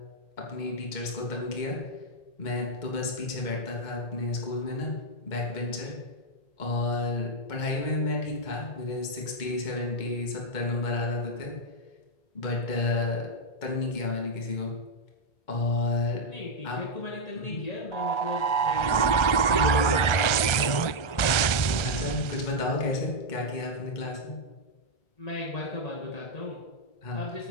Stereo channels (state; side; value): late; right; 1.4 ms